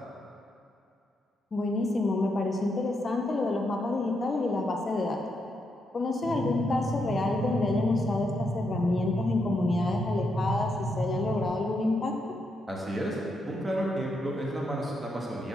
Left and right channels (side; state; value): both; normal; correlation 0.80